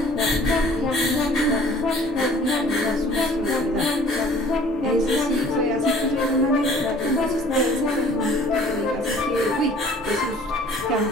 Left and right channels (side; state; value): both; normal; correlation 0.52